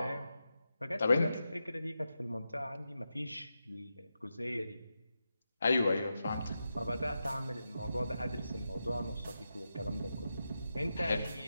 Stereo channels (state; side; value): inverted; both; correlation -0.89